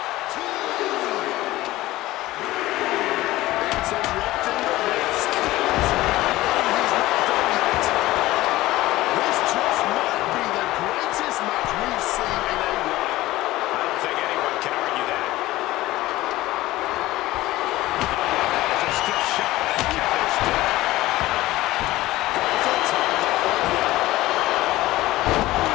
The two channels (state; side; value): quieter; right; 17.3 dB